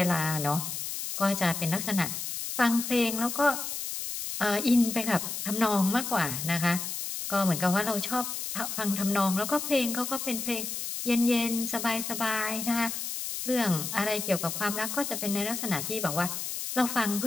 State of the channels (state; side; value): noise; left; hiss, 5 dB below the sound